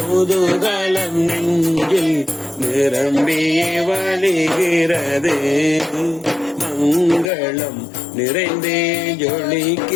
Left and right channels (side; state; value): right; drops out; at 7.3 s